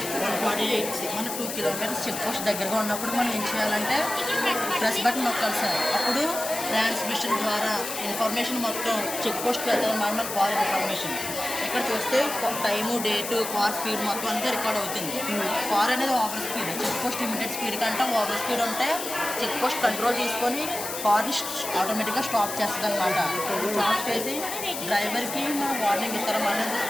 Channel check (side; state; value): left; noise; hiss, 6 dB below the sound